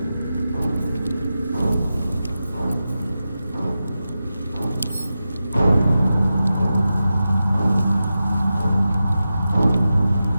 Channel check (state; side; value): inverted; both; correlation -0.91